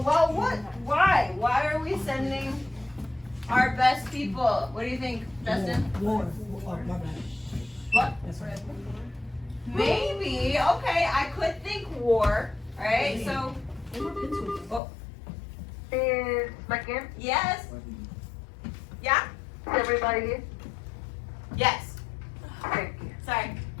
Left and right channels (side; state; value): right; drops out; at 14.8 s